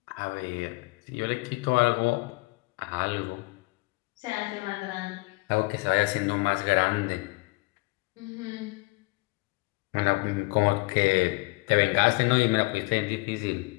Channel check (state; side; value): quieter; right; 25.3 dB